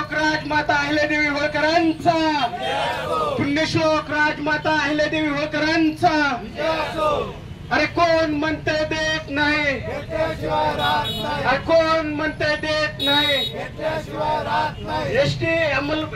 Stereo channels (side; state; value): both; identical; correlation 1.00